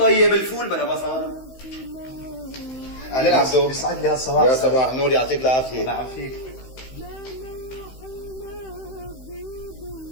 الفول بلا بصل. اهلين عبدو. يسعد لي هالصباح. يا صباح النور يعطيك العافية. الله يعافيك.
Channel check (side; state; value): right; late; 15 ms